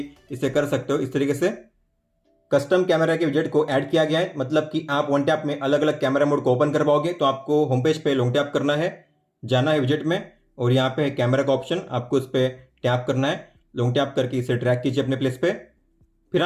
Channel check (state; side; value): identical; both; correlation 1.00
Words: इसे कर सकते हो। इस तरीके से कस्टम कैमरा के विजेट को ऐड किया गया है, मतलब कि आप वन टैप में अलग अलग कैमरा मोड को ओपन कर पाओगे। तो आपको होम पेज पे लॉन्ग टैप करना है, जाना है विजेट में, और यहाँ पे है कैमरा का ऑप्शन, आपको इस पर टैप करना है। लॉन्ग टैप करके इसे ड्रैग कीजिए अपने प्लेस पे। फिर